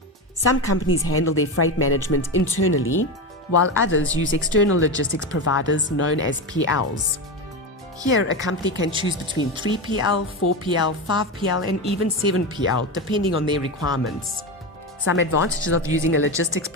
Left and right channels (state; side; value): normal; both; correlation 0.18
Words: Some companies handle their freight management internally, while others use external logistics providers known as PLs. Here, a company can choose between 3PL, 4PL, 5PL, and even 7PL, depending on their requirements. Some advantages of using a logistics